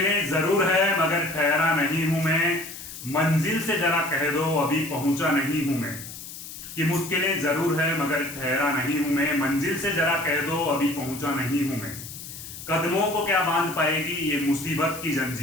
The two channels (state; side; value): noise; left; hiss, 12 dB below the sound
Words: जरूर है मगर ठहरा नहीं हूं मैं। मंजिल से जरा कह दो अभी पहुंचा नहीं हूं मैं। कि मुश्किलें जरूर है मगर ठहरा नहीं हूं मैं। मंजिल से जरा कह दो अभी पहुंचा नहीं हूं मैं। कदमों को क्या बांध पाएगी ये मुसीबत की